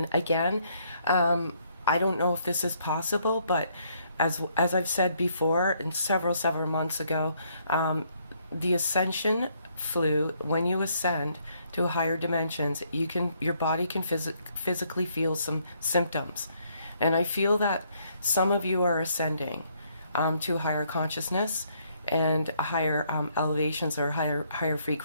again, I don't know if this is possible, but as I've said before, and several months ago, the Ascension flu, when you ascend to higher dimensions, your body can physically feel some symptoms. And I feel that some of you are ascending to a higher consciousness and higher elevations, or higher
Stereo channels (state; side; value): inverted; both; correlation -0.70